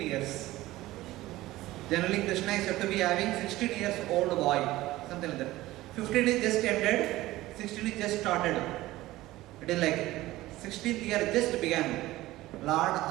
years. Generally Krishna is said to be having 16 years old boy, something like that. 15 is just ended, 16 is just started. It is like 16th year just began. Lord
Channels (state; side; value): quieter; left; 17.2 dB